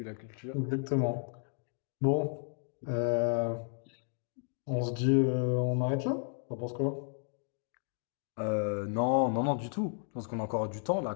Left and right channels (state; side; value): silent; right; 56 dB below the other